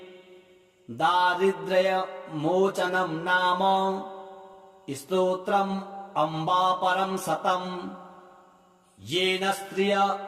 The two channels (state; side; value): identical; both; correlation 1.00